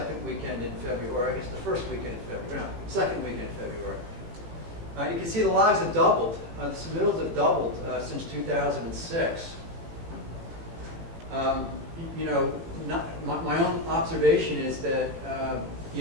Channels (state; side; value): late; left; 17 ms